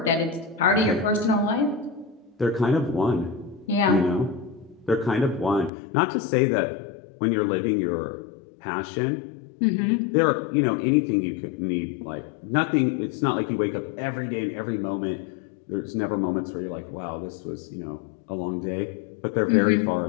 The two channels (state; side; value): drops out; right; at 5.7 s